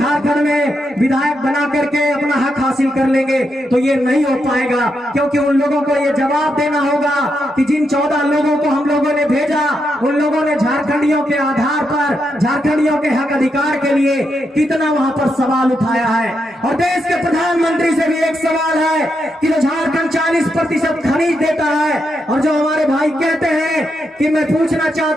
में विधायक बना करके अपना हक हासिल कर लेंगे, तो ये नहीं हो पाएगा। क्योंकि उन लोगों को ये जवाब देना होगा कि जिन 14 लोगों को हम लोगों ने भेजा, उन लोगों ने झारखंडियों के आधार पर, झारखंडियों के हक अधिकार के लिए कितना वहां पर सवाल उठाया है। और देश के प्रधानमंत्री से भी एक सवाल है कि जो झारखंड 40% खनिज देता है, और जो हमारे भाई कहते हैं कि मैं पूछना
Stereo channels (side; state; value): both; normal; correlation 0.83